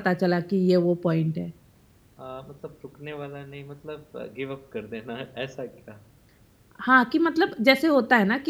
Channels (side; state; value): both; identical; correlation 1.00